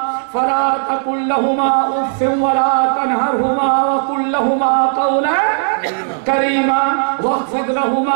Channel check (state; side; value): silent; left; digital silence